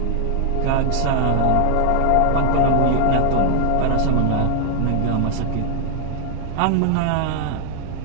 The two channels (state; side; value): different; both; correlation 0.00